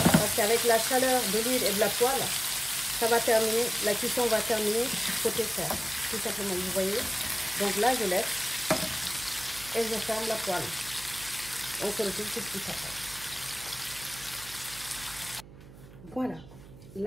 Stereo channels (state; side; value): noise; right; hum, 18 dB below the sound